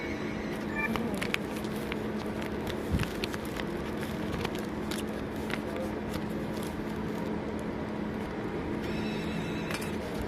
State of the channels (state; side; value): identical; both; correlation 1.00